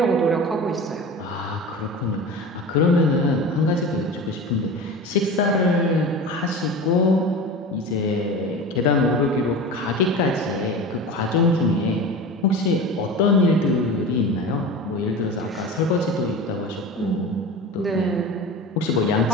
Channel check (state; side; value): normal; both; correlation 0.32